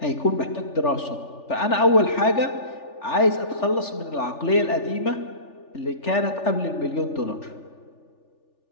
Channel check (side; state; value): right; late; 3.4 ms